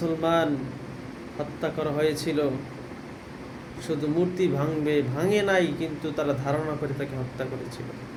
হত্যা করা হয়েছিল, শুধু মূর্তি ভাঙে নাই, কিন্তু তারা ধারণা করে তাকে হত্যা করেছিল।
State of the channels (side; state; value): both; identical; correlation 1.00